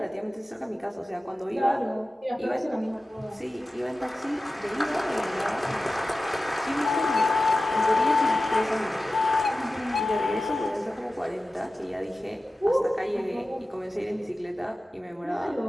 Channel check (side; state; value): both; normal; correlation 0.95